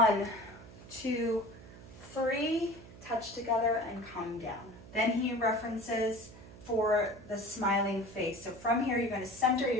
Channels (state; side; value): noise; right; hum, 18 dB below the sound